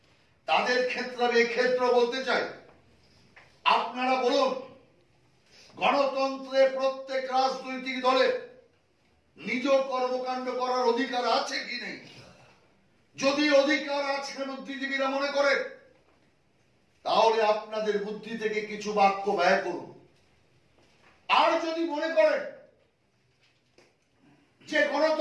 তাদের ক্ষেত্রে আমি এই ক্ষেত্র বলতে চাই, আপনারা বলুন, গণতন্ত্রে প্রত্যেক রাজনৈতিক দলের নিজ কর্মকাণ্ড করার অধিকার আছে কি নেই? যদি অধিকার আছে বুদ্ধিজীবীরা মনে করেন, তাহলে আপনাদের বুদ্ধি থেকে কিছু বাক্য ব্যয় করুন। আর যদি মনে করেন যে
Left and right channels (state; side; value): identical; both; correlation 1.00